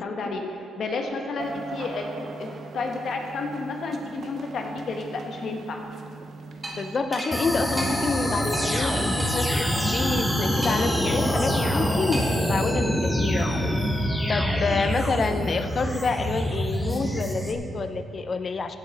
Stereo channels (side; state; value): both; normal; correlation 0.86